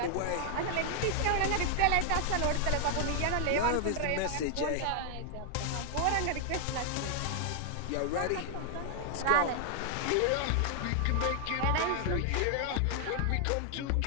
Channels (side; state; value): both; different; correlation 0.00